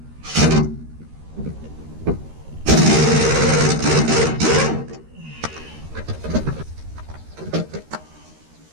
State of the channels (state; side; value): late; left; 13 ms